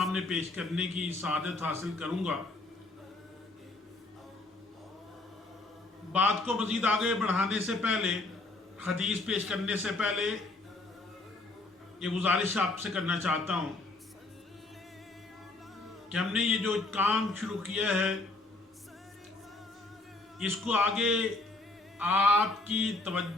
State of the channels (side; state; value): right; quieter; 3.0 dB